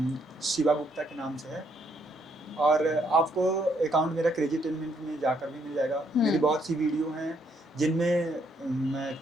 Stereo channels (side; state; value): both; normal; correlation 0.72